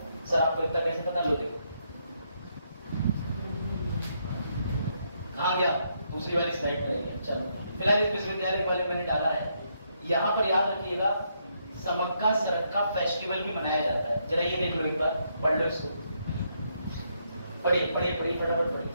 सर आपको इतना कैसे पता? लो देखो कहाँ गया, दूसरी वाली स्लाइड में रहेगा। चलो फिलहाल इस विश्वविद्यालय के बारे में मैंने डाला है। यहाँ पर याद रखिएगा समक्का सरक्का फेस्टिवल भी मनाया जाता है। जरा ये देख लो, एक बार पढ़ लो इसको, पढ़िए पढ़िए पढ़िए फटाफट पढ़िए।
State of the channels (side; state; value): both; inverted; correlation -0.76